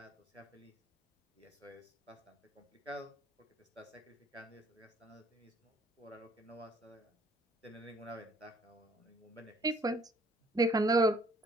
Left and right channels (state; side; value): normal; both; correlation 0.61